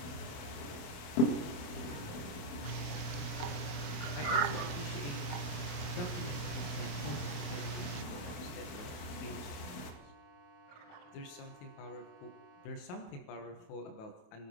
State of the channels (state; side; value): late; right; 28 ms